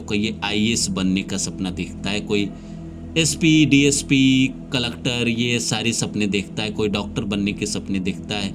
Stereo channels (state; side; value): identical; both; correlation 1.00